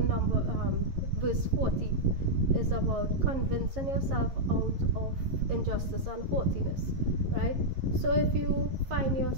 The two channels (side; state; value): left; late; 11 ms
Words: verse 40, is about convincing yourself out of injustice and haughtiness, right? So if you find